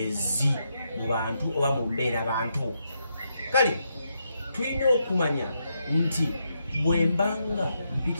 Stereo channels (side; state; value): both; inverted; correlation -0.81